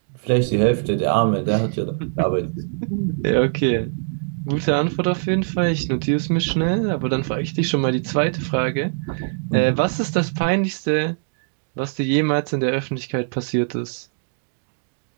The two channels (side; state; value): left; silent; digital silence